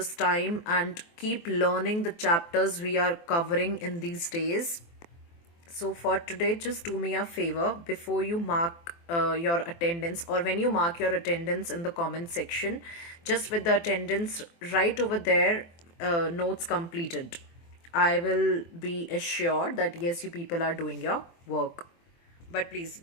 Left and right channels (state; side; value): late; right; 24 ms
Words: time and keep learning the chapters we are covering in these days. So for today, just do me a favor. Before you mark your attendance, or when you mark your attendance in the comment section, just with the attendance right over there, notes completed, I will be assured that yes, you people are doing your work. But please